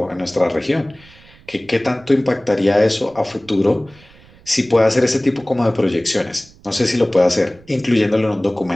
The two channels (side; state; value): right; noise; rumble, 26 dB below the sound